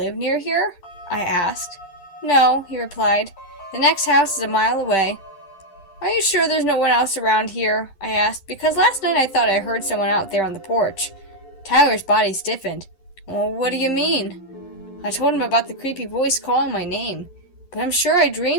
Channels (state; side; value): late; right; 11 ms